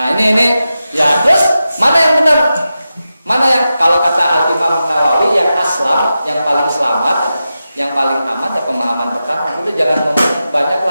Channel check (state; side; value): inverted; both; correlation -0.91